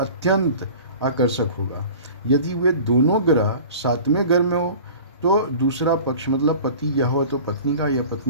आकर्षक होगा। यदि वे दोनों ग्रह 7वें घर में हो तो दूसरा पक्ष मतलब पति या हो तो पत्नी का, या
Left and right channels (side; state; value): both; inverted; correlation -0.41